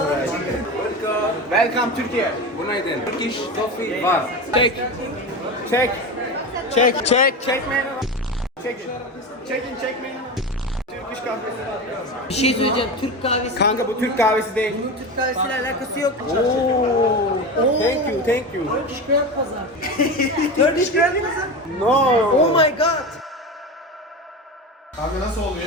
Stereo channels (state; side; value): normal; both; correlation 0.24